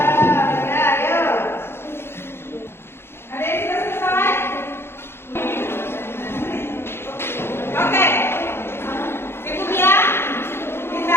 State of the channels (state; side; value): late; right; 0.12 ms